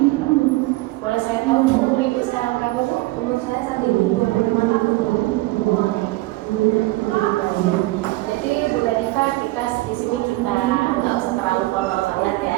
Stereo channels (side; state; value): left; quieter; 20.2 dB